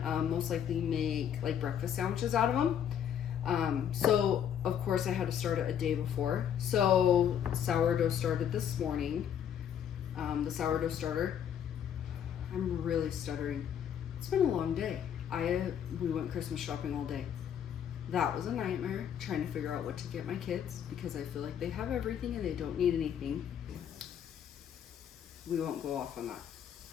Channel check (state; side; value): quieter; right; 9.0 dB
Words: most likely make like breakfast sandwiches out of them. So of course I had to start it a day before. So sourdough started this morning, the sourdough starter. I'm really stuttering. It's been a long day. We went Christmas shopping all day. That was a nightmare, trying to figure out what to get my kids because I feel like they have everything and they don't need anything. We won't go off on that.